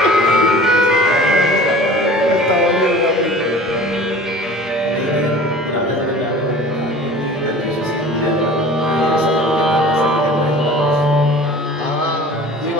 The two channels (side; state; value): both; normal; correlation 0.43